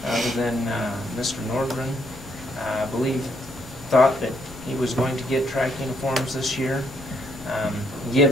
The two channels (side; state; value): left; noise; rumble, 24 dB below the sound